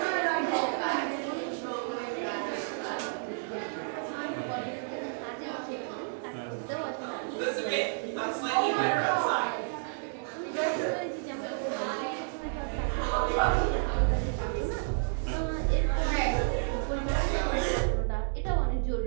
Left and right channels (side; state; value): left; silent; digital silence